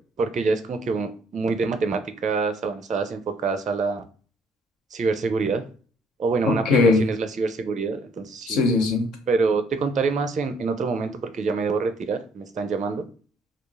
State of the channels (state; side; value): normal; both; correlation 0.64